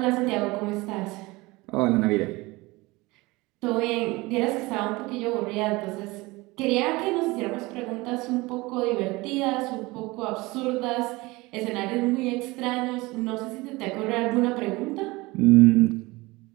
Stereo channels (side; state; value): left; quieter; 22.2 dB